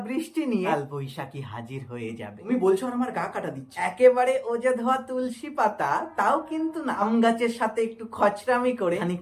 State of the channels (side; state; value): both; identical; correlation 1.00